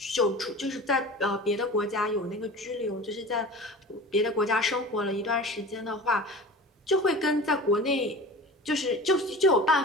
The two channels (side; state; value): both; normal; correlation 0.37